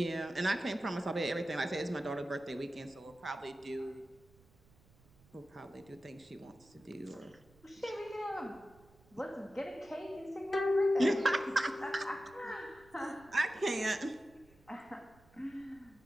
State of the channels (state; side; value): noise; right; rumble, 28 dB below the sound